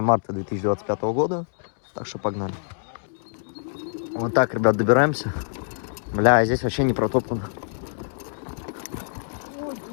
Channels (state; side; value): silent; right; 62 dB below the other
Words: марта 2025 года. Так что погнали. Вот так, ребят, добираемся. Бля, здесь вообще не протоптано.